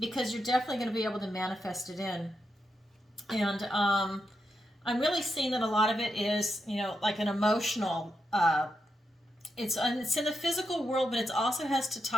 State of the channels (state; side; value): normal; both; correlation 0.84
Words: because you're definitely going to be able to manifest it in. And I'm really seeing that a lot of it is, you know, like an emotional, it's in the physical world, but it also has to